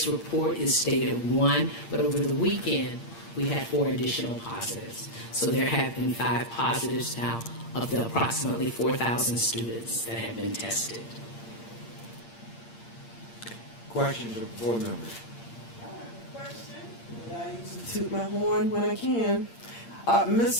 report, it stated 1, but over the weekend, we had 4 additional positives. So there have been 5 positives now of the approximately 4,000 students that have been tested. Questions of board members? I usually toot my horn when I can.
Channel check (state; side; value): late; right; 8.7 ms